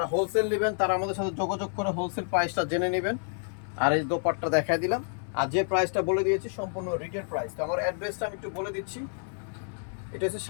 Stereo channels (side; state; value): right; silent; digital silence